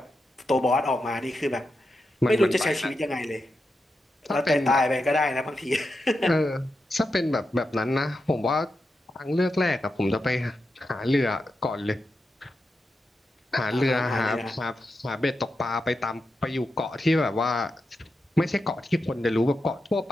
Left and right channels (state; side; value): normal; both; correlation 0.88